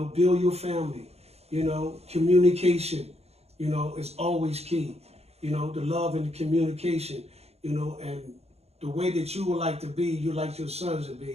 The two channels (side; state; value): left; late; 0.30 ms